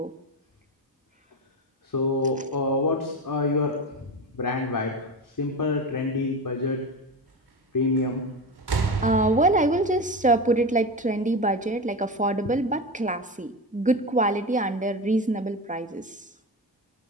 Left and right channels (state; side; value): normal; both; correlation 0.22